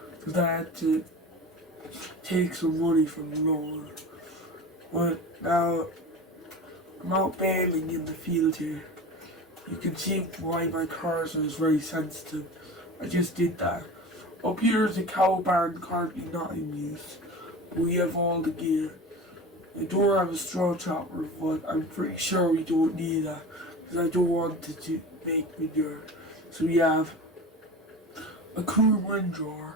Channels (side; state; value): both; normal; correlation 0.33